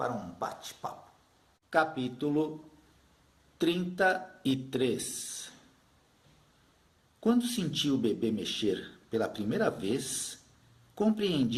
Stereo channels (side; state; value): both; identical; correlation 1.00